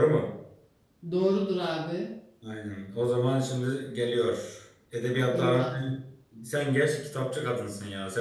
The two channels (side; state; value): both; identical; correlation 1.00